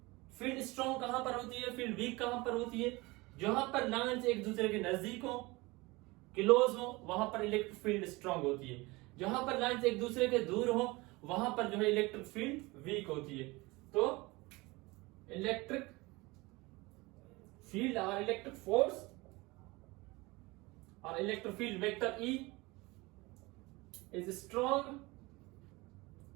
फील्ड स्ट्रॉन्ग कहां पर होती है, फील्ड वीक कहां पर होती है, जहां पर लाइंस एक दूसरे के नजदीक हो, क्लोज हो, वहां पर इलेक्ट्रिक फील्ड स्ट्रॉन्ग होती है। जहां पर लाइंस एक दूसरे के दूर हो, वहां पर जो है इलेक्ट्रिक फील्ड वीक होती है। तो इलेक्ट्रिक फील्ड और इलेक्ट्रिक फोर्स और electric field vector E is strong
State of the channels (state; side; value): quieter; left; 23.0 dB